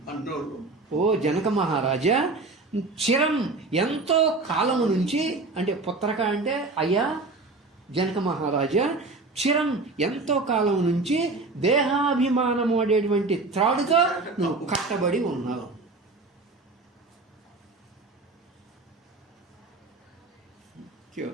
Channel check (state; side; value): quieter; left; 3.5 dB